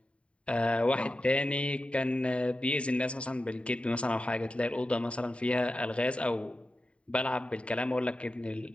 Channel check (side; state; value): right; late; 0.060 ms